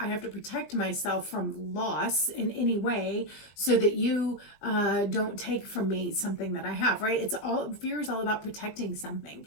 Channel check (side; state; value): right; late; 20 ms